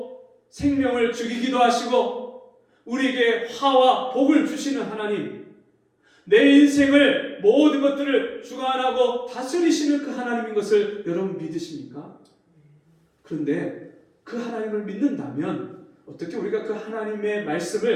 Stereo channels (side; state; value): both; identical; correlation 1.00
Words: 생명을 죽이기도 하시고 우리에게 화와 복을 주시는 하나님, 내 인생을 모든 것들을 주관하고 다스리시는 그 하나님인 것을 여러분 믿으십니까? 그런데 그 하나님을 믿는다면 어떻게 우리가 그 하나님의